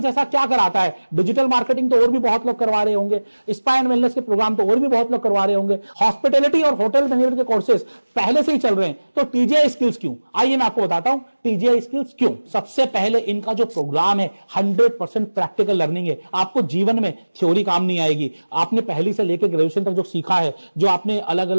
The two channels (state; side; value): inverted; both; correlation -1.00